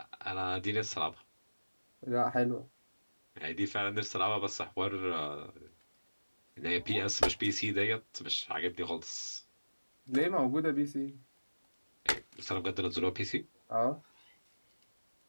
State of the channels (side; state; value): both; inverted; correlation -1.00